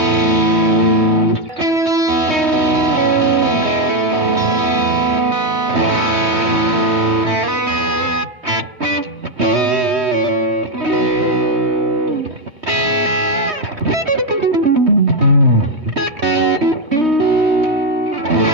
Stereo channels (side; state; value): left; late; 3.2 ms